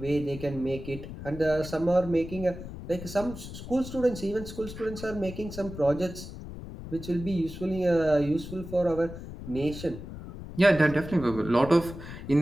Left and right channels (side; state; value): left; noise; rumble, 11 dB below the sound